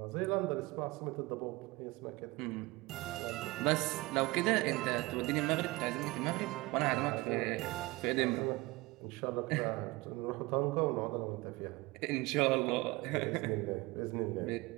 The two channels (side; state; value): left; quieter; 22.2 dB